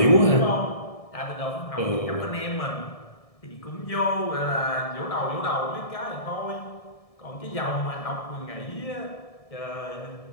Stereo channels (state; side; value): late; right; 1.7 ms